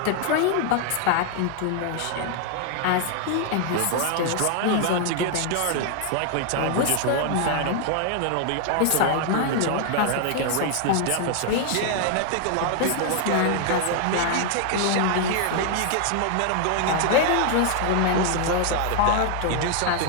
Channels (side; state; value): both; different; correlation 0.00